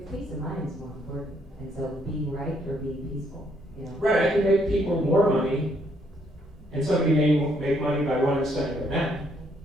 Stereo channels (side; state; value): both; normal; correlation 0.70